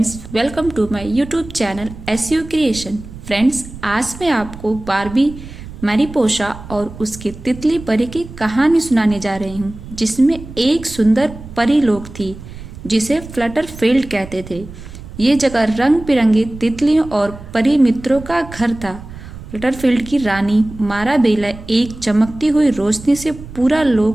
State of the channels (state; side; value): noise; right; rumble, 14 dB below the sound